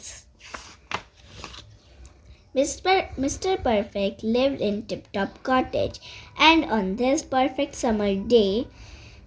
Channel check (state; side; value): identical; both; correlation 1.00